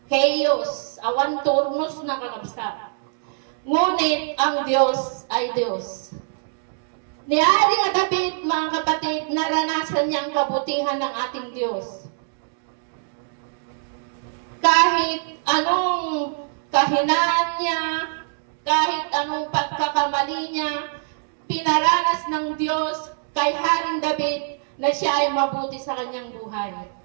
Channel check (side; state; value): left; silent; digital silence